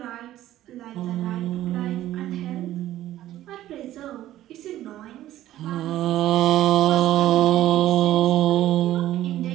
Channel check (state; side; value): quieter; left; 13.7 dB